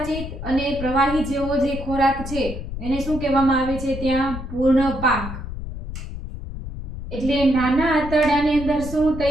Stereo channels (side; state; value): left; noise; rumble, 8 dB below the sound